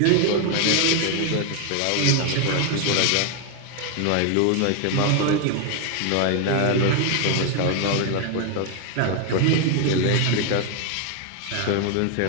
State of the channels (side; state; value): both; different; correlation 0.01